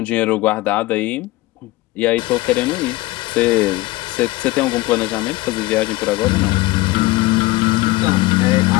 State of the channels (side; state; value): right; quieter; 19.5 dB